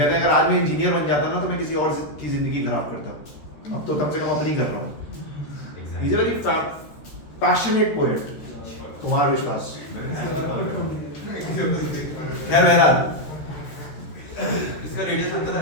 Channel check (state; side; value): late; right; 13 ms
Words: हैं अगर आज मैं इंजीनियर बन जाता ना तो मैं किसी और की जिंदगी खराब करता, अब तो कम से कम अपनी कर रहा हूँ। He is a very passionate poet, Kumar विश्वास। खैर बहरहाल, इसका रेडियस अंतर है।